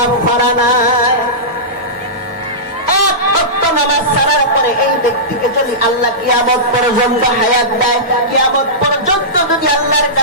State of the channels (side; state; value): both; normal; correlation -0.17